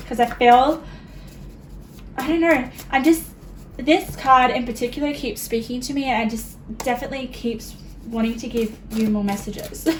I feel, I don't know, this card in particular keeps speaking to me, and I just definitely keeps wanting to give you more messages.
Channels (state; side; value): identical; both; correlation 1.00